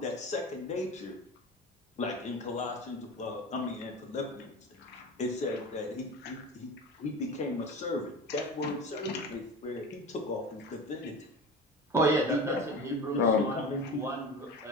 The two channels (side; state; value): both; normal; correlation 0.31